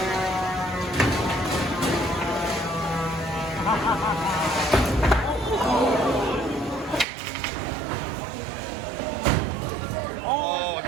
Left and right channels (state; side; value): drops out; left; at 7.1 s